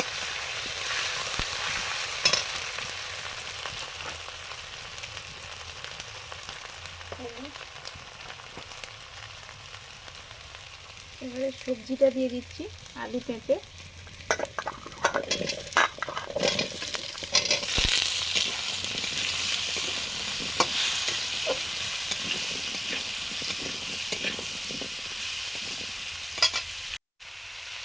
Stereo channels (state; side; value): identical; both; correlation 1.00